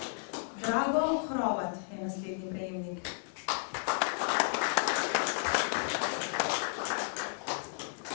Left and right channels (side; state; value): right; silent; 56 dB below the other